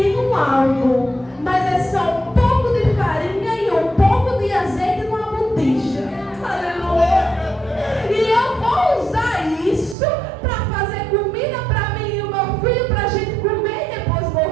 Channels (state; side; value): drops out; left; at 10.0 s